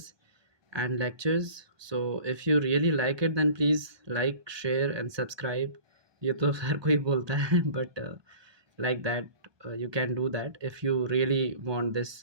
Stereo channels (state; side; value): late; left; 1.2 ms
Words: and lectures. So if you really like it then please like share and subscribe. ये तो हर कोई बोलता है but like that you can do that if you really want this